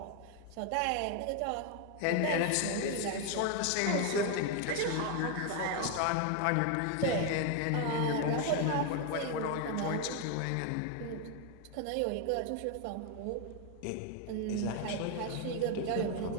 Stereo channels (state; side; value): different; both; correlation 0.01